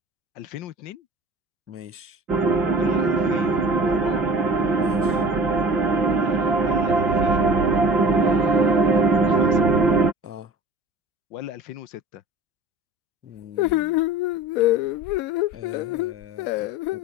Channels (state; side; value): normal; both; correlation 0.41